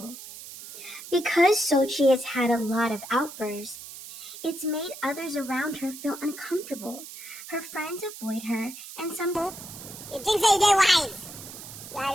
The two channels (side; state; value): right; noise; hiss, 13 dB below the sound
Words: Because Sochi has had a lot of outbursts, it's made others around her feel uncomfortable. Her friends avoid her, and some... You think they're wise?